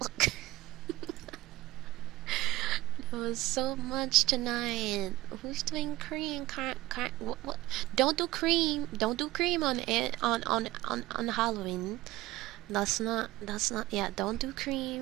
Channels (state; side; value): quieter; left; 17.5 dB